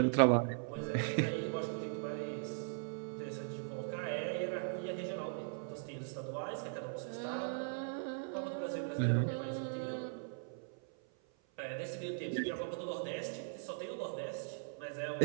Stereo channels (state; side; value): silent; left; 52 dB below the other